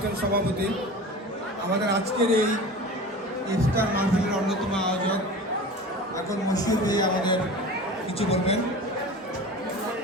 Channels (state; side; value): normal; both; correlation 0.35